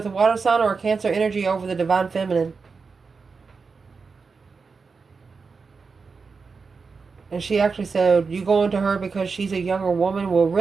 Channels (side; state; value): left; quieter; 4.8 dB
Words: a water sign or a Cancer energy over the divine feminine. And she actually said, you going to her because she's a younger woman? Well,